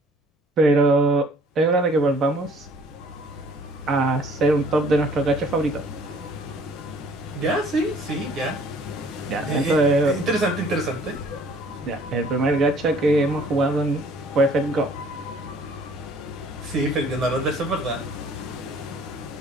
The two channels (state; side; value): normal; both; correlation 0.56